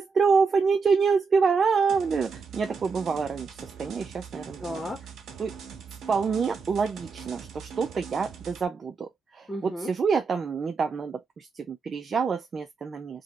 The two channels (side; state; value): left; quieter; 5.0 dB